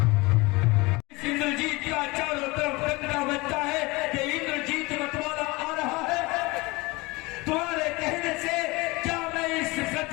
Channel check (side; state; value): right; quieter; 23.7 dB